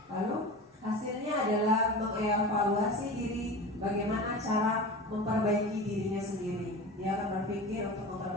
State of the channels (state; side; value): normal; both; correlation 0.32